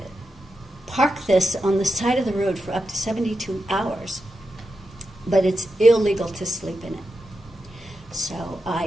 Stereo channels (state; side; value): normal; both; correlation 0.88